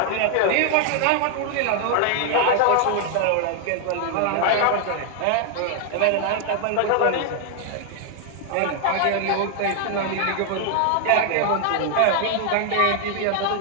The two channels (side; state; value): both; different; correlation 0.00